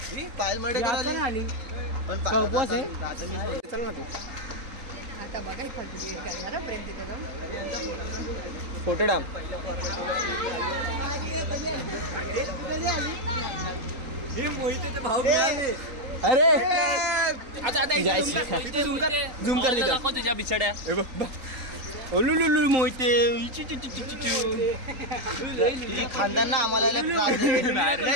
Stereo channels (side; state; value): left; late; 3.8 ms